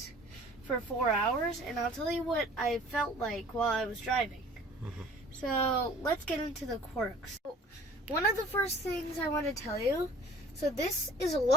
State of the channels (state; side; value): normal; both; correlation 0.49